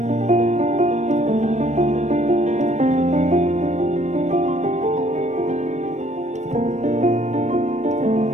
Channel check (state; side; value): late; left; 0.34 ms